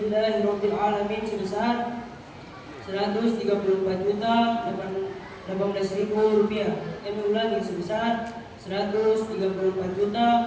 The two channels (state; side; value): identical; both; correlation 1.00